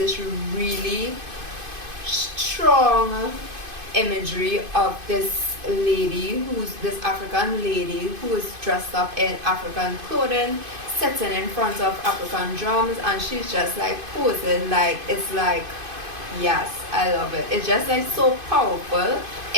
really strong imagery of this African lady who is dressed up in African clothing, sitting in front of African drums, and she's just like posing. Like, it's like, yes, I love it. It's just like so powerful.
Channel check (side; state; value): left; late; 2.5 ms